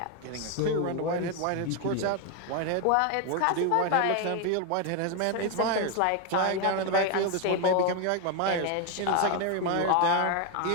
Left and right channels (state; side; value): different; both; correlation 0.01